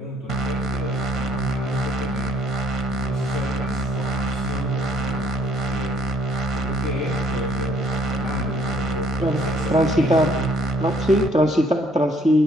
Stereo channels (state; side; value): normal; both; correlation 0.63